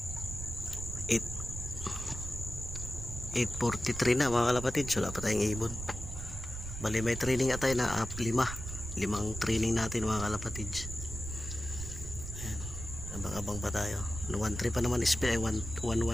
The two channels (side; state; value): right; noise; rumble, 8 dB below the sound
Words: 8:43 na mga kalapatids. Wala pa tayong ibon. Bali may training atay na 5 training natin mga kalapatids. Ayan. Abang-abang pa tayo. 1-3 pa naman speed ay 1-1